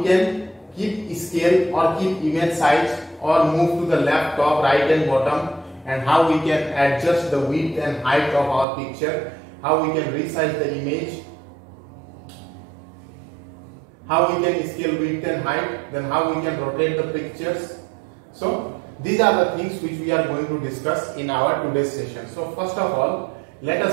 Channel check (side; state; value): left; drops out; at 8.7 s